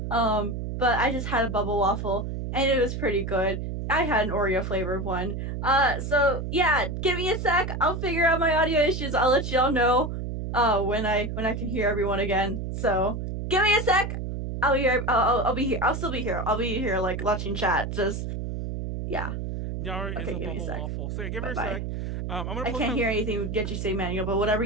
But I just had a bubble waffle, and it was pretty good. I had an Oreo flavored one. So yeah, give me a sec. I'll figure out my audio issues. I'll let y'all know when I can hear everyone again. So give me a sec. I'll be here. I'll be here. I'll still be here. I'll be here like watching chat. Just yeah. Nyaru Okay, is a give me a bubble sec. waffle. So yeah, give her a Bye-bye. sec. I'm gonna I can't hear anything that you say, Manuel. But whatever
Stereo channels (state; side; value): noise; right; hum, 4 dB below the sound